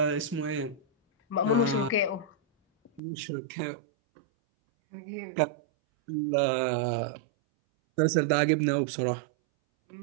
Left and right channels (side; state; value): left; drops out; at 3.0 s